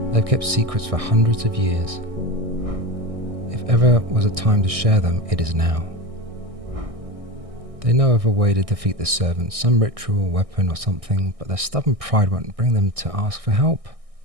They've kept secrets for hundreds of years. If ever was a time to share them, it is now. They know of a way to defeat the servants, some ritual, weapon or something, but their stubborn pride won't bring them to ask for help.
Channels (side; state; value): left; late; 1.6 ms